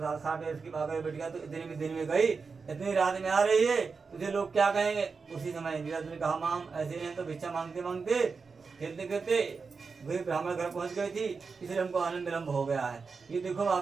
खा के उसकी भागर बेटिया तो इतने दिन में गई, इतनी रात में आ रही है, तुझे लोग क्या कहेंगे। उसी समय लीलावती ने कहा माम ऐसे नहीं तो भिक्षा मांगते मांगते खेलते खेलते गरीब ब्राह्मण घर पहुंच गई थी, इसलिए हमको आनंद विलम्ब हो गया है। ये देखो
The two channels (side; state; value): left; quieter; 4.9 dB